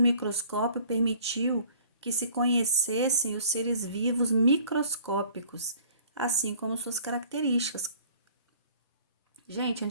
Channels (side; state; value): both; inverted; correlation -0.53